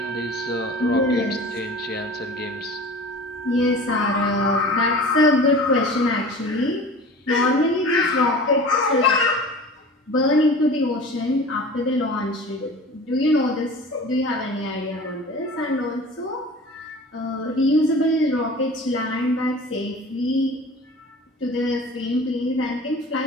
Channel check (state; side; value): normal; both; correlation 0.39